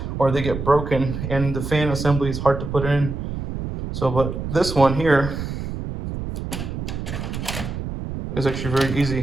or they get broken, and the fan assembly is hard to put in. So, but this one here is actually very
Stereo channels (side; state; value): right; noise; rumble, 6 dB below the sound